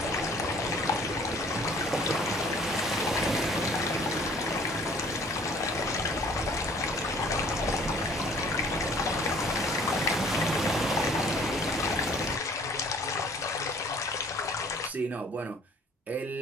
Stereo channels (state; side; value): normal; both; correlation 0.54